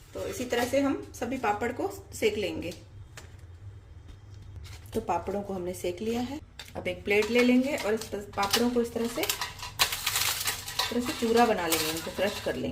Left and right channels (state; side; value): identical; both; correlation 1.00